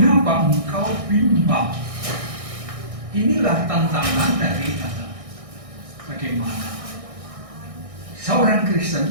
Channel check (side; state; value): left; late; 1.6 ms